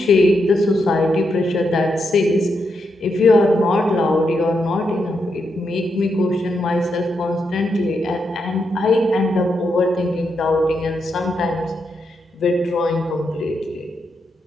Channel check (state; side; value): normal; both; correlation 0.82